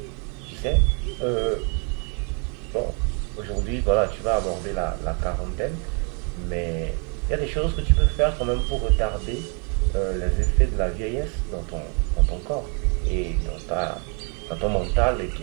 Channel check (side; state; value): left; quieter; 37.3 dB